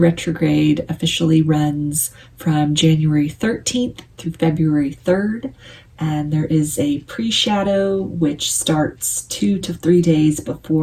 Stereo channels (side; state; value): both; identical; correlation 1.00